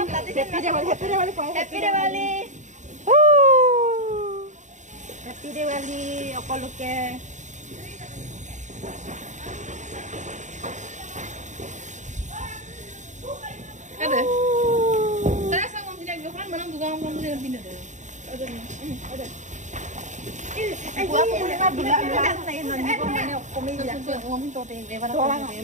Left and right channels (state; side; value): late; left; 0.35 ms